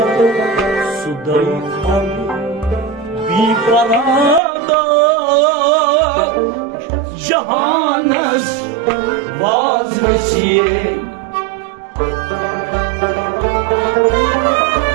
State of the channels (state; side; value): drops out; left; at 4.4 s